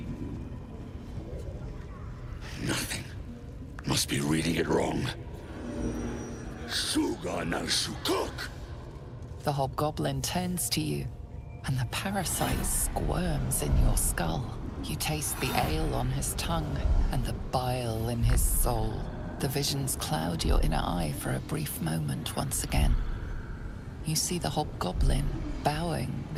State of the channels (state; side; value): identical; both; correlation 1.00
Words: Nothing. Must be reading it wrong. Shugan al Shukok! The hobgoblin turns to you, and the parasite squirms in your skull. You taste the ale on his tongue and the bile in his soul. The visions cloud your inner eye for a brief moment once again. You see the hobgoblin bowing